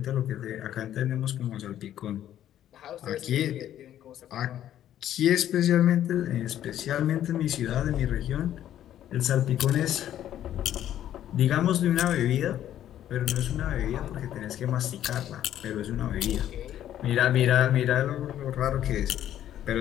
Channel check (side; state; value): right; quieter; 11.5 dB